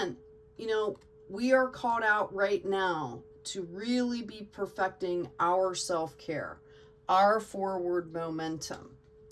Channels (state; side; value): identical; both; correlation 1.00